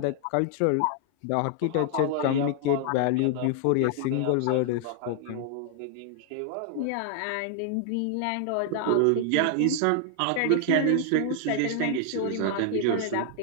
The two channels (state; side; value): different; both; correlation 0.00